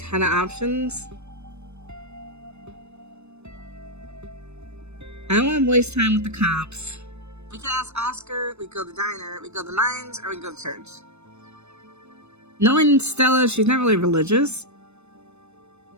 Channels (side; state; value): left; late; 0.81 ms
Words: of options. I don't want to waste time with the cops. We could ask Oscar, we go to the diner, we go to the mines, or we go to church. Knowing Stella, she's not really religious.